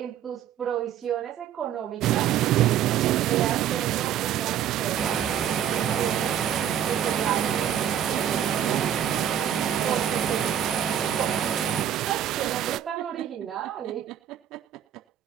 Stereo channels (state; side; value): quieter; left; 10.0 dB